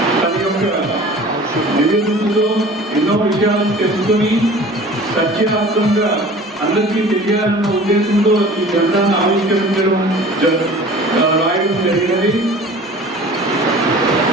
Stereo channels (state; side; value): normal; both; correlation 0.44